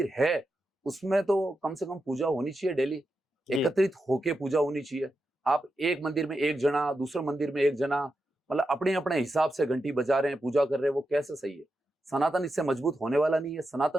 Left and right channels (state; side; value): normal; both; correlation 0.88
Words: है उसमें तो कम से कम पूजा होनी चाहिए डेली, एकत्रित होके पूजा होनी चाहिए। आप एक मंदिर में एक जना, दूसरे मंदिर में एक जना, मतलब अपने अपने हिसाब से घंटी बजा रहे हैं, पूजा कर रहे हैं, वो कैसे सही है? सनातन इससे मजबूत होने वाला नहीं है।